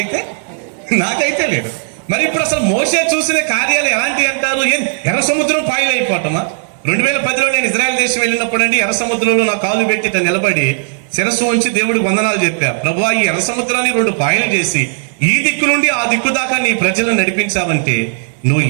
లేదు. మరి ఇప్పుడు అసలు మోషే చూసిన కార్యాలు ఎలాంటివి అంటారు? ఎర్ర సముద్రం పాయలు అయిపోవటమా? 2010లో నేను ఇజ్రాయెల్ దేశం వెళ్ళినప్పుడు అండి, ఎర్ర సముద్రంలో నా కాలు పెట్టి నిలబడి శిరస్సు ఉంచి దేవుడికి వందనాలు చెప్పా. ప్రభువా, ఈ ఎర్ర సముద్రాన్ని 2 పాయలు చేసి ఈ దిక్కు నుండి ఆ దిక్కు దాకా నీ ప్రజలను నడిపించావంటే నువ్వు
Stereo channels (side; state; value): left; silent; 64 dB below the other